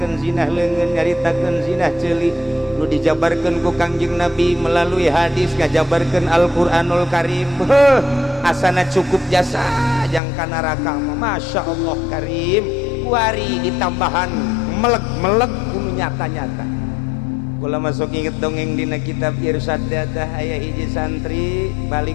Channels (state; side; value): drops out; right; at 10.2 s